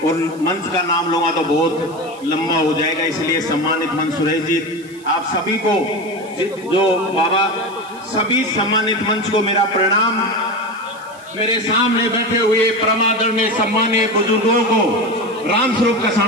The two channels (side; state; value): right; noise; hiss, 24 dB below the sound